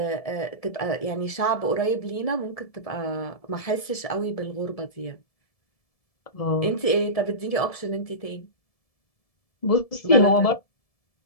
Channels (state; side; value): late; right; 1.7 ms